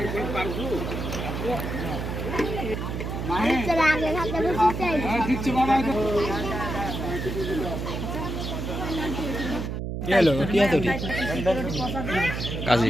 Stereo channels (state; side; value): noise; right; hum, 4 dB below the sound